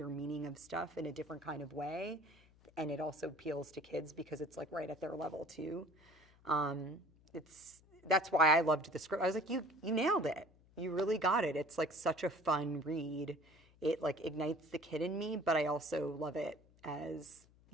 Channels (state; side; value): noise; left; hum, 28 dB below the sound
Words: meaning of stuff in a different kind of way. And it also appeals to kids because it's like right at their level too. That's why I loved the script. I was like, you nailed it. you really got it. It's like such a fun read. It like ignites the kid in me, but I also love it as,